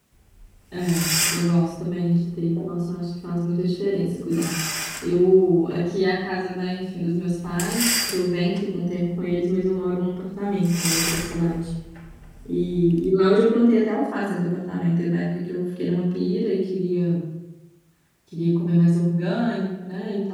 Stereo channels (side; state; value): both; identical; correlation 1.00